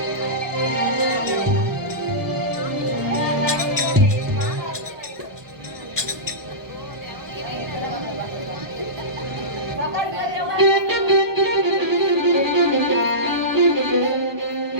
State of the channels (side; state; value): left; late; 1.2 ms